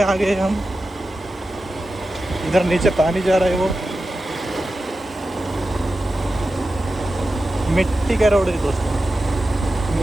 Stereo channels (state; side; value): normal; both; correlation 0.92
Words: आ गए हम इधर नीचे पानी जा रहा है वो मिट्टी का रोड है दोस्तों